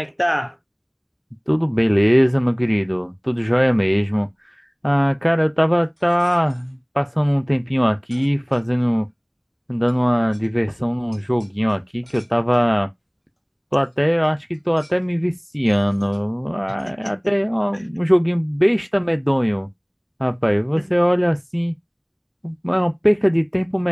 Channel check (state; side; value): identical; both; correlation 1.00